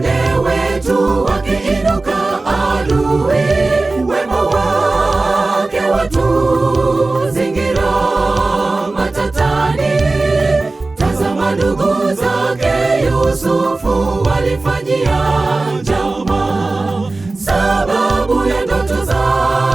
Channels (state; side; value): quieter; left; 3.3 dB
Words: wetu, wakiinuka adui, wema wake watuzingira matatani. Tazama ndugu zake Yusufu walifanyia njama, sababu ya ndoto